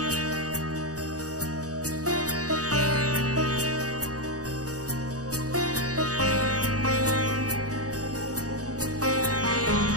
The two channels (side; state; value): left; late; 0.67 ms